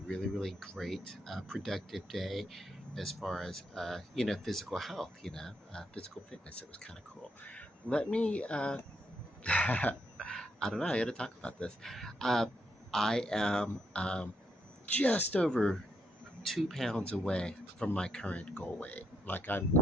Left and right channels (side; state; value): both; normal; correlation 0.78